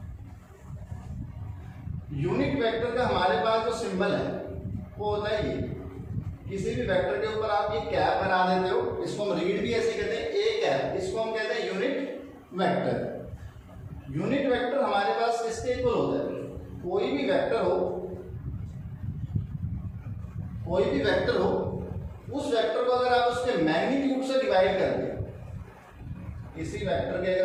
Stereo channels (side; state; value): both; identical; correlation 1.00